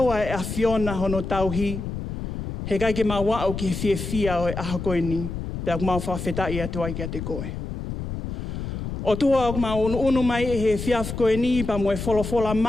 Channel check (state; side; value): noise; left; rumble, 6 dB below the sound